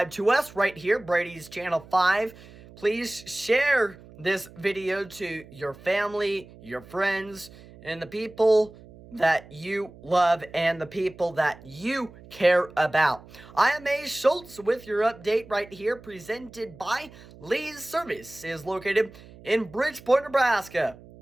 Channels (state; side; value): noise; right; hum, 21 dB below the sound